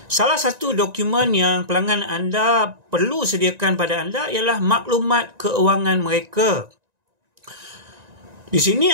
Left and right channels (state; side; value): late; left; 1.9 ms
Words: Salah satu dokumen yang pelanggan anda perlu sediakan pada anda ialah maklumat keuangan mereka. Di sini